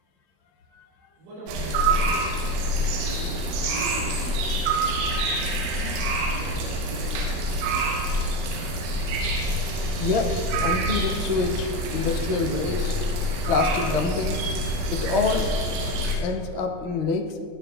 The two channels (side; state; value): left; late; 40 ms